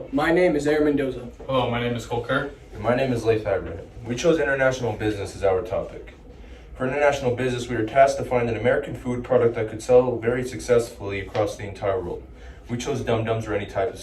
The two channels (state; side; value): identical; both; correlation 1.00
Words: my name is Aaron Mendoza. Hello, my name is Cole Kerr. And my name is Leif Abraham. We chose international business as our topic. For international business, we were tasked to find an American food product that could sell very successfully across the entire world. We chose Dum Dums or any type of